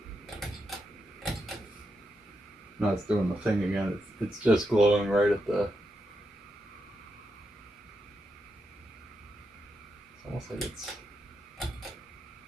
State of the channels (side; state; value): both; normal; correlation 0.84